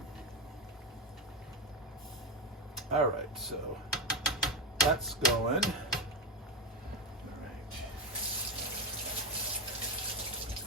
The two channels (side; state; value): both; normal; correlation 0.10